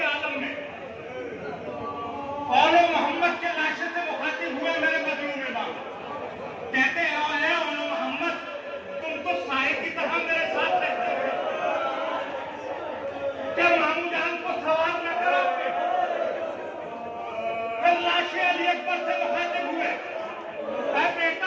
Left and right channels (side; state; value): both; identical; correlation 1.00